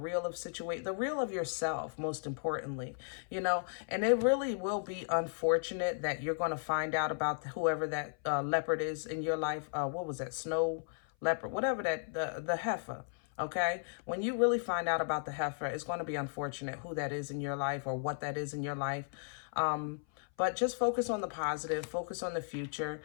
of situation, the real of yourself, most importantly, you know. And it really will be unfortunate that you're going to find out about whoever that leopard is in your life. What was that? Snow leopard, whatever that, the heifer. Okay, when you really find out about the heifer, it's going to be unfortunate who that is in your life or what that is in your life. But just focus on the positive, focus on the future.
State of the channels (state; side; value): silent; right; 54 dB below the other